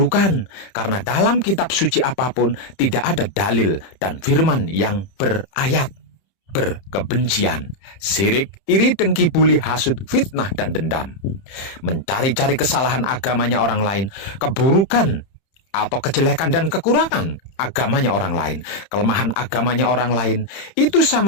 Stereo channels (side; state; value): right; late; 30 ms